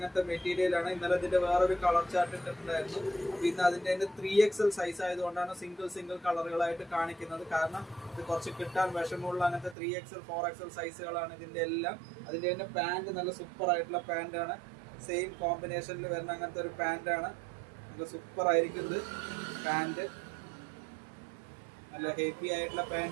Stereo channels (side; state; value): left; drops out; at 9.8 s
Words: മെറ്റീരിയൽ ആണ്. ഇന്നലെ ഇതിന്റെ വേറൊരു കളർ ചാർട്ട് ഇട്ടിട്ടുണ്ടായിരുന്നു. പിന്നെ അതിന്റെ 3XL സൈസ് ആയതുകൊണ്ടാണ് സിംഗിൾ കളറുകളായിട്ട് കാണിക്കുന്നത്. കാരണം ഇത് കുറച്ച് കിട്ടാൻ വിഷമമുള്ള അങ്ങനത്തെ 3XL 4XL സൈസുകളാണ് ഇതിന്റെ എല്ലാം. അതിന്റെ തന്നെ പാന്റ് നല്ല സൂപ്പർ ആയിട്ടുള്ള പാന്റ് ആണ്. സെയിം കോമ്പിനേഷനിൽ വരുന്ന അങ്ങനത്തെ ഒരു പാന്റ് ആണ്. നല്ല സൂപ്പർ ആയിരിക്കുന്നത് പാന്റ്. നല്ല ഹെവി ആയിട്ടുള്ള